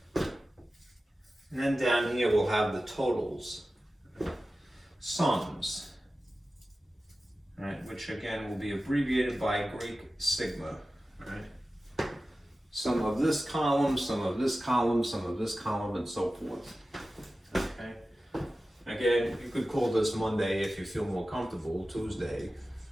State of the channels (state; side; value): normal; both; correlation 0.95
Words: And then down here we'll have the totals, sums, right, which again will be abbreviated by Greek sigma, right? some of this column, some of this column, some of this column, and so forth. Okay. Again, you could call this Monday if you feel more comfortable, Tuesday,